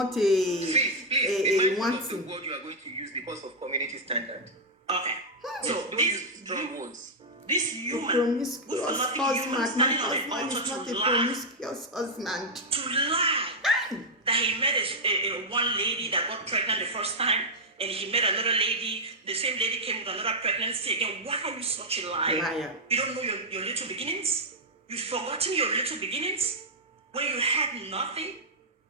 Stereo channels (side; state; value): both; normal; correlation -0.04